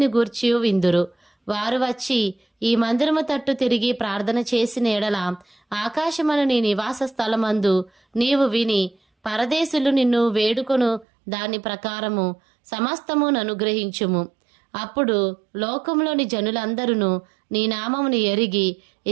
గూర్చియు విందురు. వారు వచ్చి ఈ మందిరము తట్టు తిరిగి ప్రార్థన చేసిన ఎడల ఆకాశమను నీ నివాస స్థలమందు నీవు విని పరదేశులు నిన్ను వేడుకొను దాని ప్రకారము సమస్తమును అనుగ్రహించుము. అప్పుడు లోకంలోని జనులందరూ నీ నామమును ఎరిగి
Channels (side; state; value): left; drops out; at 11.1 s